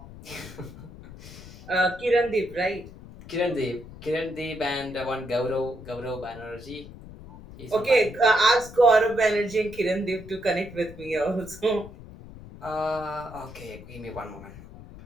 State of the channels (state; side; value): noise; left; rumble, 16 dB below the sound